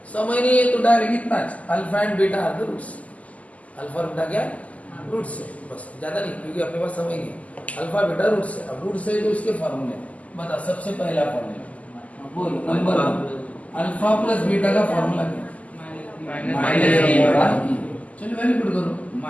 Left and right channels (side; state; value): right; late; 0.072 ms